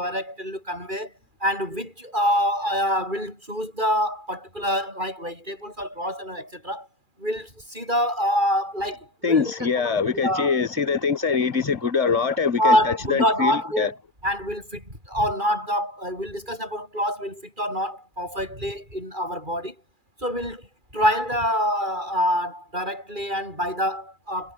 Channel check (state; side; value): late; left; 2.4 ms